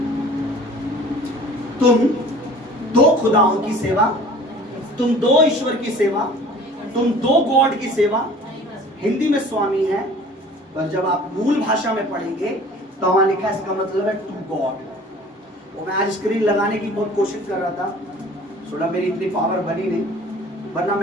तुम दो खुदाओं की सेवा, तुम दो ईश्वर की सेवा, तुम दो गॉड की सेवा, हिंदी में स्वामी है, पर जब आप मूल भाषा में पढ़ेंगे तो वहां लिखा है, इसका मतलब है टू गॉड। वो मैं आज स्क्रीन लगाने की बहुत कोशिश कर रहा था, थोड़ा मेरी इतनी पावर बनी नहीं, वरना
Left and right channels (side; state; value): both; normal; correlation 0.47